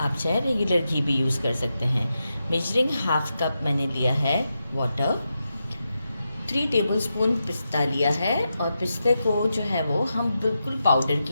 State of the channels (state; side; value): inverted; both; correlation -0.88